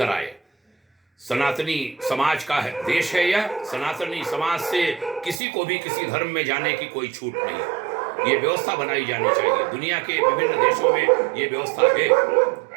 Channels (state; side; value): drops out; left; at 5.4 s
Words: सनातनी समाज का देश है यह। सनातनी समाज से किसी को भी किसी धर्म में जाने की कोई छूट नहीं। ये व्यवस्था बनाई जानी चाहिए। दुनिया के विभिन्न देशों में ये व्यवस्था